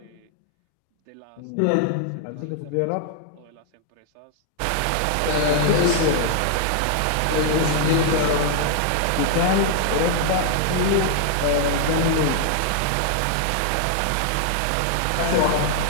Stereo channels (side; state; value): both; different; correlation -0.01